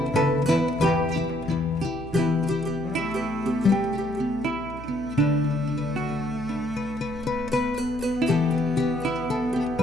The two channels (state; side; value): noise; left; hum, 15 dB below the sound